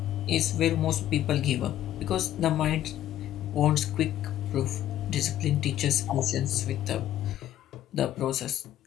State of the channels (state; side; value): quieter; right; 12.3 dB